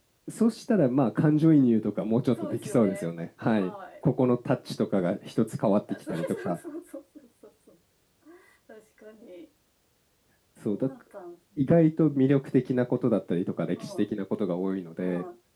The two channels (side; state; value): both; identical; correlation 1.00